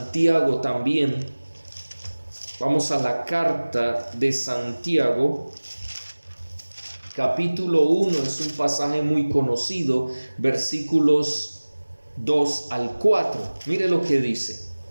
también. Vamos a la carta de Santiago, capítulo 1, es un pasaje muy conocido, versículos 2 al 4. Mire lo que dice.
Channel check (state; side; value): inverted; both; correlation -1.00